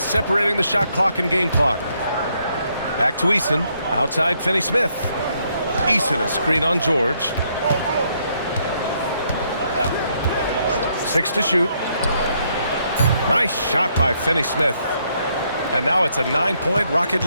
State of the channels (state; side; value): inverted; both; correlation -0.73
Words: separating the shot clock and game clock. Back to Eason. Outside Finney-Smith. Eason a screen on George. 6 to shoot. Nice shot by Finney-Smith. And now it's a 9-point Rocket